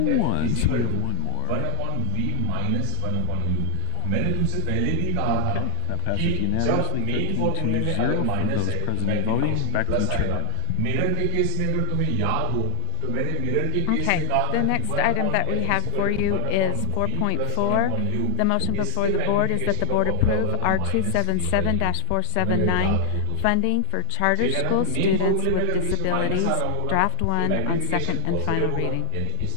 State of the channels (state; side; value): different; both; correlation 0.00